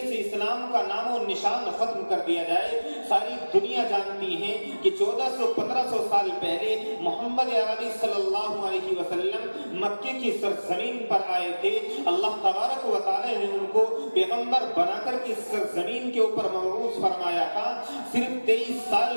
سے اسلام کا نام و نشان ختم کر دیا جائے۔ ساری دنیا جانتی ہے کہ 1400-1500 سال پہلے محمد عربی صلی اللہ علیہ وسلم مکے کی سرزمین پر آئے تھے۔ اللہ تبارک و تعالی نے ان کو پیغمبر بنا کر کے سرزمین کے اوپر مبعوث فرمایا تھا۔ صرف 23 سال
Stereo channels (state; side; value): inverted; both; correlation -1.00